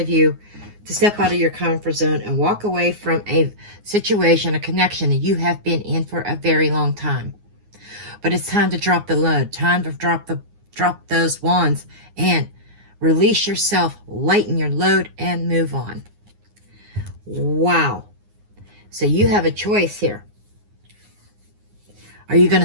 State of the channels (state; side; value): late; left; 9.6 ms